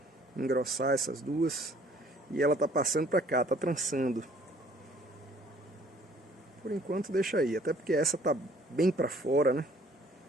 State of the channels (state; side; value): normal; both; correlation 0.58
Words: engrossar essas duas. E ela tá passando pra cá, tá trançando. Por enquanto deixa aí, até porque essa tá bem pra fora, né?